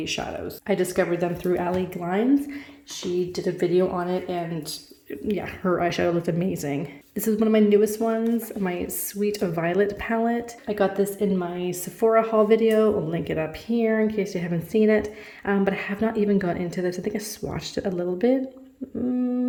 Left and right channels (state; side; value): identical; both; correlation 1.00